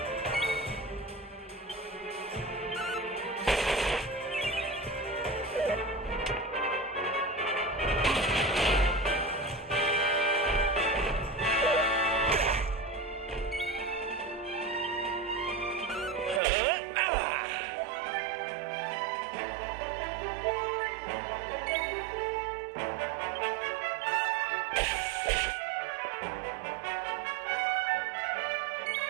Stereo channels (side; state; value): left; drops out; at 16.4 s